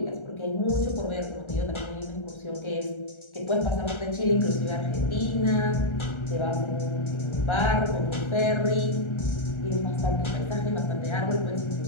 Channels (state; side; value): late; right; 1.3 ms